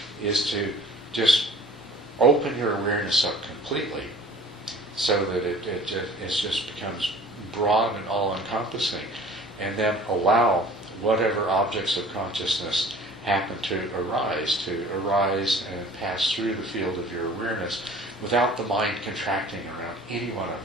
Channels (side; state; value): both; normal; correlation 0.47